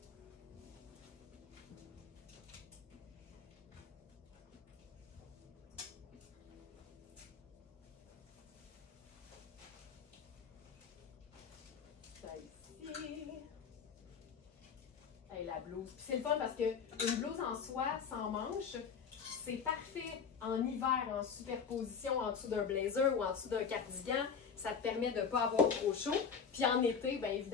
Hey, la blouse. Puis c'est le fun parce qu'une blouse en soie sans manches, c'est parfait en hiver, en superposition en dessous d'un blazer ou en dessous d'un cardigan. Ça te permet de ne pas avoir trop chaud. Puis en été, bien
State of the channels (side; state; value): right; quieter; 6.4 dB